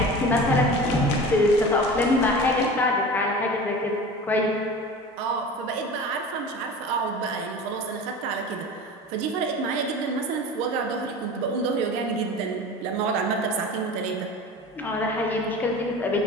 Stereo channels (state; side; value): normal; both; correlation 0.35